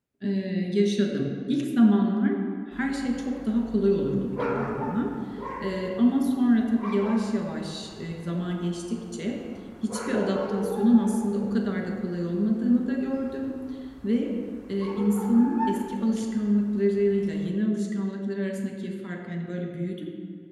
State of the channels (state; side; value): identical; both; correlation 1.00